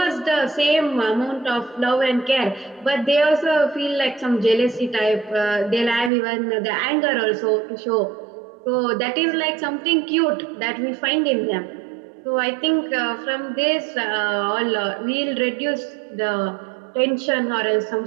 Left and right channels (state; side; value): drops out; left; at 6.1 s